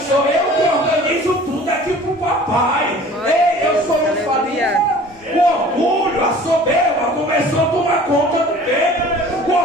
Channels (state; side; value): normal; both; correlation 0.46